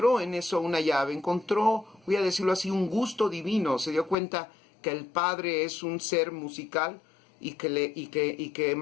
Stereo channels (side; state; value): right; drops out; at 4.2 s